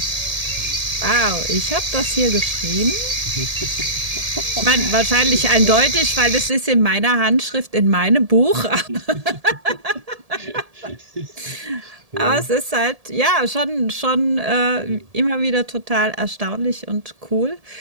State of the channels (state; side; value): late; left; 1.7 ms